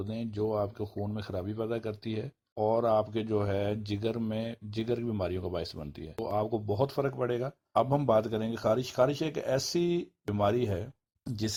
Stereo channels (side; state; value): both; identical; correlation 1.00